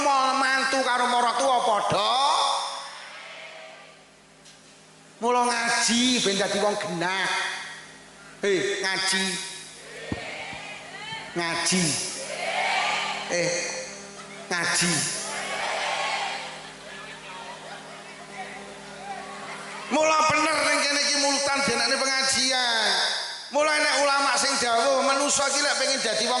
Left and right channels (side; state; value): both; identical; correlation 1.00